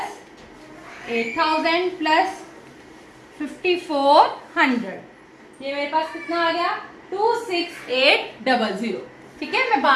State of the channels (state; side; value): identical; both; correlation 1.00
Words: 8000 प्लस 5400, ये मेरे पास कितना आ गया 26800। ठीक है, मैं